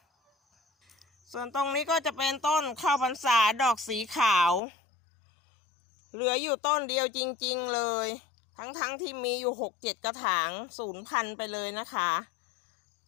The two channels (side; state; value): right; drops out; at 4.6 s